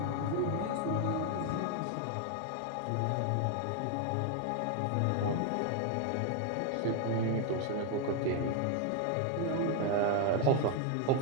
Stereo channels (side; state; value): both; different; correlation 0.01